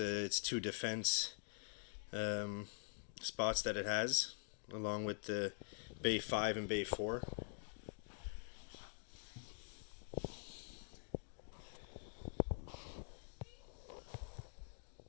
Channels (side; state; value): right; silent; digital silence